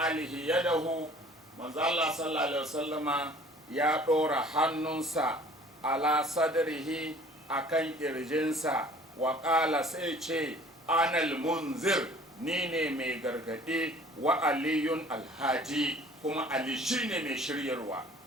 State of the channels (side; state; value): both; normal; correlation 0.51